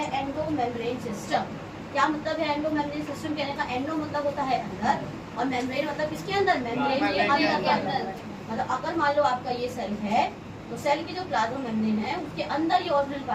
एंडो मेम्ब्रेन सिस्टम। क्या मतलब है एंडो मेम्ब्रेन सिस्टम कहने का? एंडो मतलब होता है अंदर और मेम्ब्रेन मतलब किसके अंदर? मेम्ब्रेन के अंदर के अंदर। मतलब अगर मान लो आपका ये सेल है तो सेल की जो प्लाज्मा मेम्ब्रेन है उसके अंदर ये ऑर्गेनेल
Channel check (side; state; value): both; identical; correlation 1.00